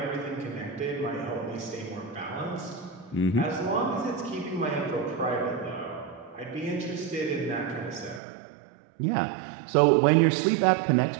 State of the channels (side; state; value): left; drops out; at 8.2 s